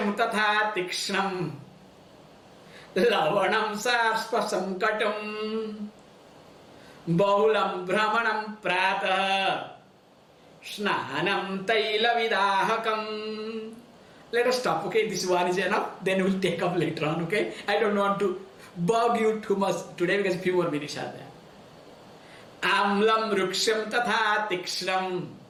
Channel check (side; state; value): both; identical; correlation 1.00